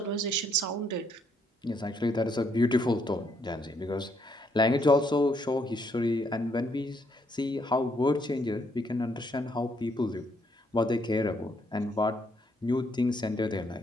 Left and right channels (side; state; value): both; normal; correlation 0.71